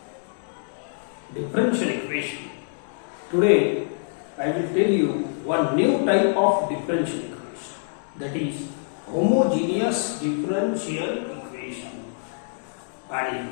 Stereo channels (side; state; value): right; silent; digital silence